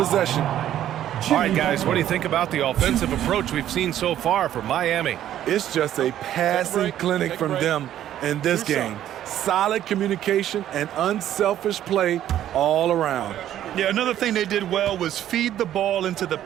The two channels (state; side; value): quieter; left; 11.7 dB